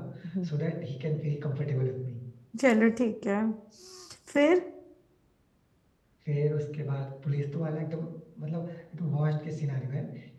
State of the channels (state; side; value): identical; both; correlation 1.00